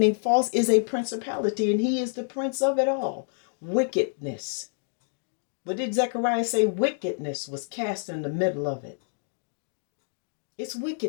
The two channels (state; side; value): silent; right; digital silence